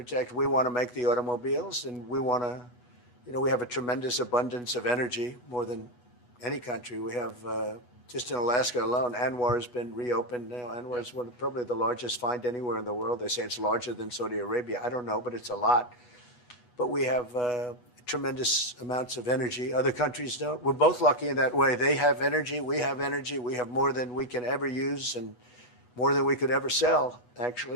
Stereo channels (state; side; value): late; right; 8.2 ms